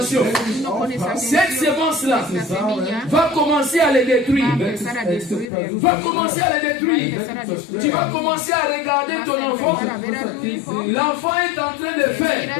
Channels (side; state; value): right; drops out; at 5.5 s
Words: cette sémence-là va commencer à les détruire. Va commencer à les détruire. Tu vas commencer à regarder ton enfant. L'enfant est en train de faire